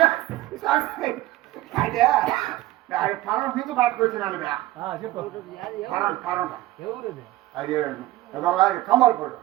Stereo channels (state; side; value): quieter; left; 16.4 dB